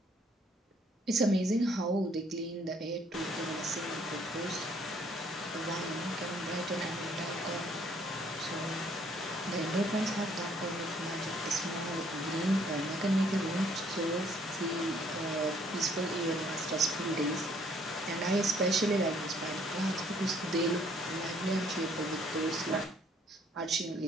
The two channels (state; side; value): normal; both; correlation 0.63